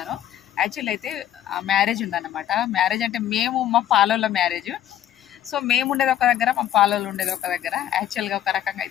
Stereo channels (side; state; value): right; quieter; 11.7 dB